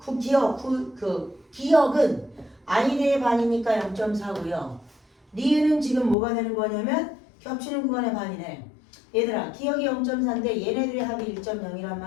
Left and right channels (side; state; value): right; drops out; at 6.2 s